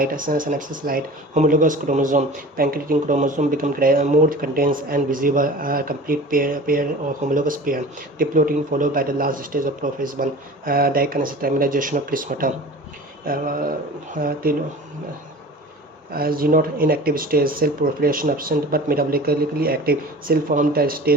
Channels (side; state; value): both; normal; correlation 0.39